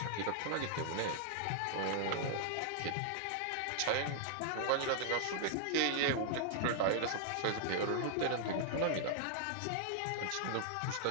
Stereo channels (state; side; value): different; both; correlation -0.01